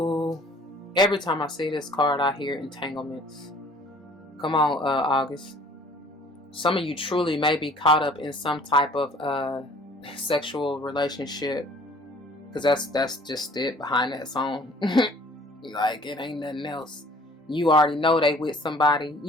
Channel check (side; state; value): both; normal; correlation 0.53